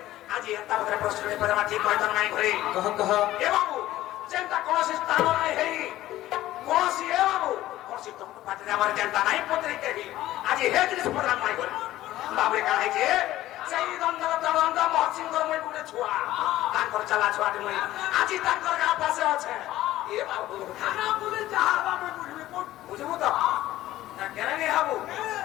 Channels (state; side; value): quieter; right; 15.0 dB